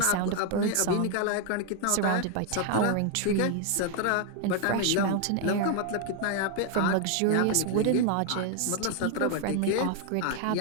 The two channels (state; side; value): different; both; correlation 0.00